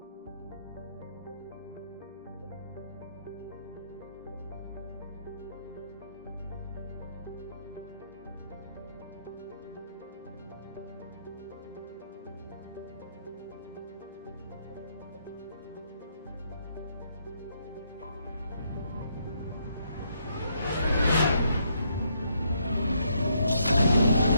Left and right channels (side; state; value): both; inverted; correlation -0.74